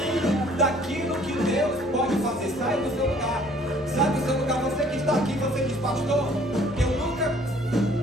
daquilo que Deus pode fazer. Sai do seu lugar, sai do seu lugar. Você que está aqui, você diz: pastor, eu nunca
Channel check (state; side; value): normal; both; correlation 0.57